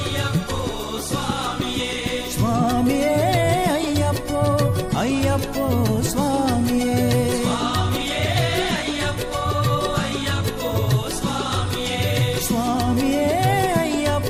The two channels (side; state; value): both; identical; correlation 1.00